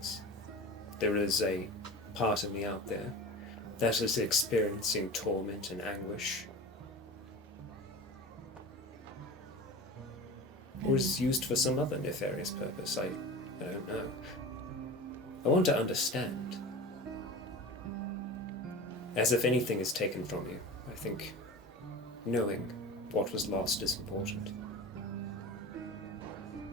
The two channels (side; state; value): both; normal; correlation 0.32